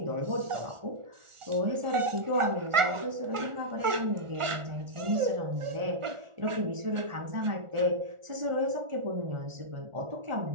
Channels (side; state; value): left; late; 1.4 ms